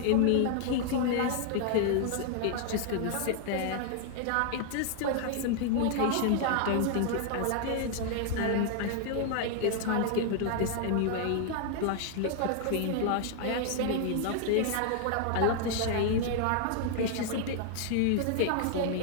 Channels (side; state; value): both; different; correlation 0.00